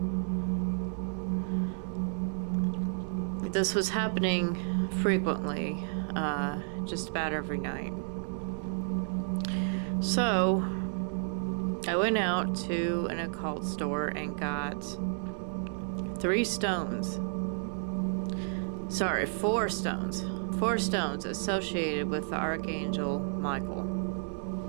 This was happening frequently, just about every night. So I went out to an occult store and got 4 stones. 4 stones associated with the Archangel Michael,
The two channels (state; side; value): silent; left; digital silence